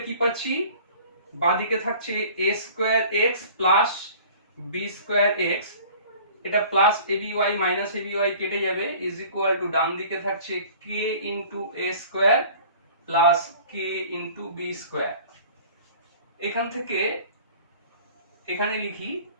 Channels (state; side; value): inverted; both; correlation -0.47